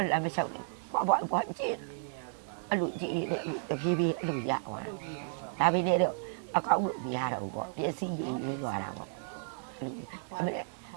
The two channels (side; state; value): left; silent; digital silence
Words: လမ်းမလျှောက်နဲ့ဖွားကျင့်အဲ့လိုကြည့်တဲ့တဖြည်းဖြည်းအဲ့လိုရသွားတာဒါပေမဲ့တော့အကောင်းလို့မရတော့ဘူးပေါ့ပစ္စည်းယူရင်းသွားတာပေါ့အဲ့လို